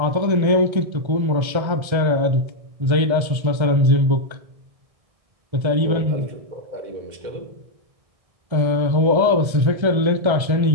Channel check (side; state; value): left; late; 1.3 ms